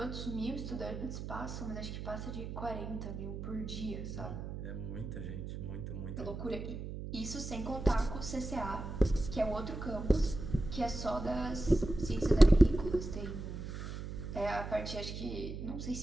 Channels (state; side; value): noise; right; hum, 7 dB below the sound